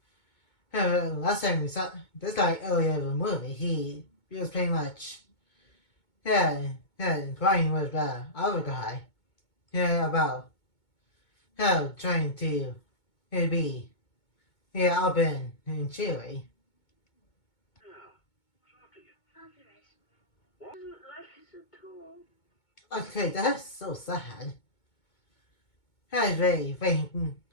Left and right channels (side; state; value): right; late; 2.2 ms